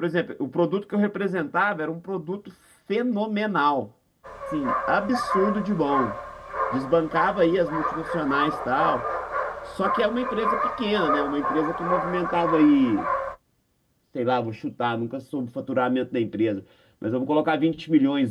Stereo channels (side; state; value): both; identical; correlation 1.00